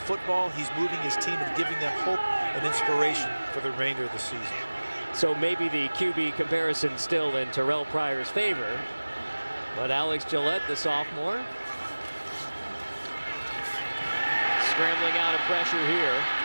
He's moving his team and giving them hope and inspiration for the remainder of the season. So maybe the QB comparison still in Terrell Pryor's favor. But Alex Gillette, the sophomore, scrambling out of pressure here,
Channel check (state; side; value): inverted; both; correlation -1.00